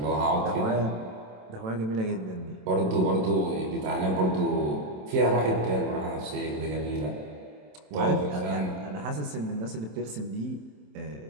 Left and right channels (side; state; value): left; late; 27 ms